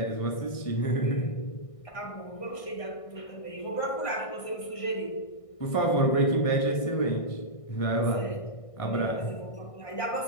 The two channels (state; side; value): late; right; 1.6 ms